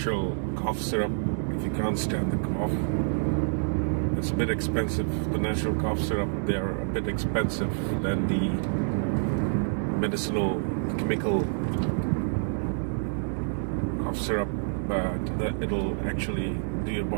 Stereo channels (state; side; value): silent; left; digital silence